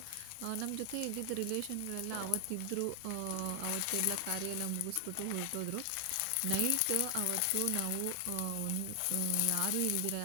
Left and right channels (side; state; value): both; different; correlation 0.00